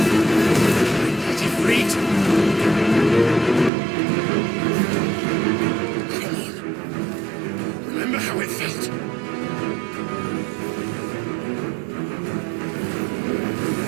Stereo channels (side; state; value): left; drops out; at 3.7 s